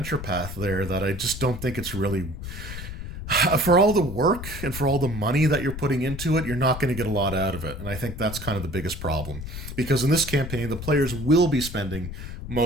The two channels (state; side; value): noise; left; rumble, 9 dB below the sound